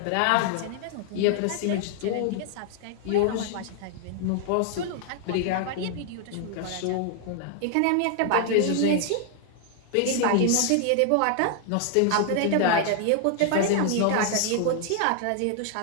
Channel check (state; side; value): different; both; correlation 0.00